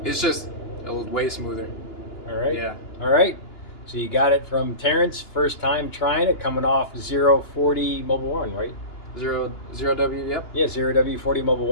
It's just way smoother. All right. Yeah. All right. So you got it from Terrence, first time trying it, coming off 040 Mobile 1, right? Zero W, yep. Yeah, 0W40 Mobile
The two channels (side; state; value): right; late; 2.9 ms